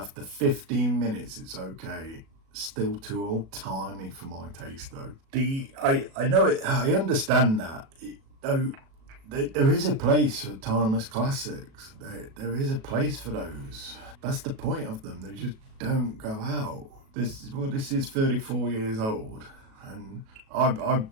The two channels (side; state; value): left; late; 37 ms